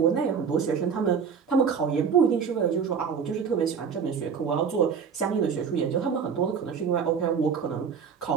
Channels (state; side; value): quieter; left; 6.5 dB